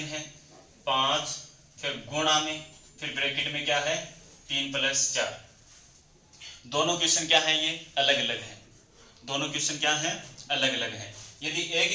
है 5 फिर गुणा में फिर ब्रैकेट में क्या है 3 प्लस 4। दोनों क्वेश्चन क्या है, ये अलग अलग है। दोनों क्वेश्चन क्या है, अलग अलग है। यदि एक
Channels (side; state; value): both; identical; correlation 1.00